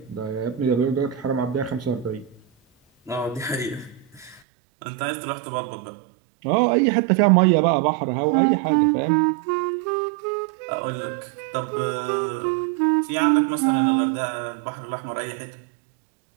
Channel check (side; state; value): left; drops out; at 4.4 s